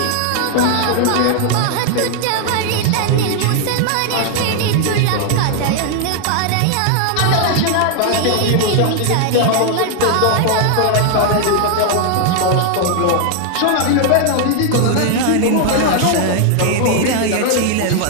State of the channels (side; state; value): both; different; correlation 0.00